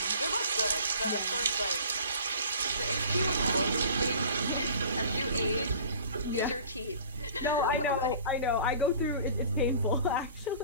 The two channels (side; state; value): both; inverted; correlation -0.45